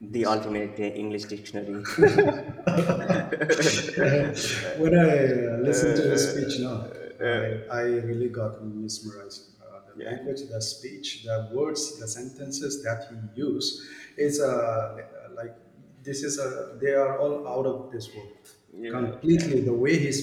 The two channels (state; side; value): identical; both; correlation 1.00